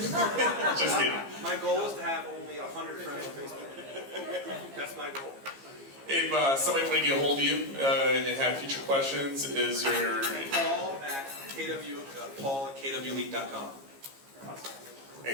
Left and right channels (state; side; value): late; left; 15 ms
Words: Just kidding. My goal is to have only 100 friends on Facebook. That's my goal. If somebody want to get a hold of you and have future questions, is there... Paul at kwELITE.com.